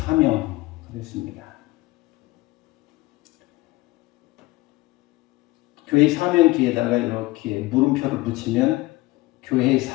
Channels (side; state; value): right; quieter; 20.0 dB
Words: 그랬습니다. 교회의 사명 뒤에다가 이렇게 물음표를 붙이면 교회의